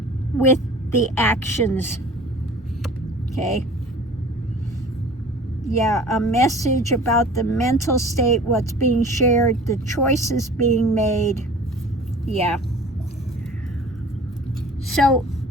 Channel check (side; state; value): both; normal; correlation 0.44